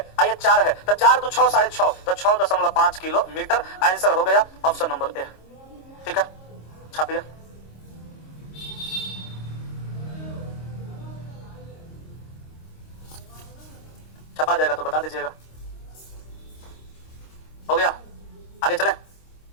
ये 4 है, तो 4 तो 6 6.5, तो 6.5 किलोमीटर आंसर हो गया ऑप्शन नंबर ए, ठीक है। छापिए, छपा जाएगा तो बता दीजिएगा। हो गया, आगे चले,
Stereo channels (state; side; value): late; right; 26 ms